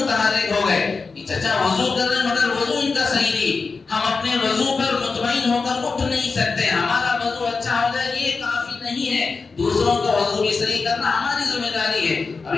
ہو گئے، چچا وضو کر رہے ہیں مگر وضو ان کا صحیح نہیں، ہم اپنے وضو پر مطمئن ہو کر اٹھ نہیں سکتے، ہمارا وضو اچھا ہو جائے یہ کافی نہیں ہے، دوسروں کا وضو بھی صحیح کرنا ہماری ذمہ داری ہے۔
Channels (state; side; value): quieter; right; 4.5 dB